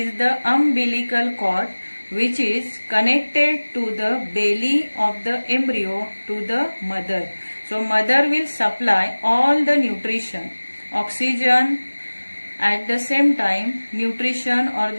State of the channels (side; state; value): both; inverted; correlation -1.00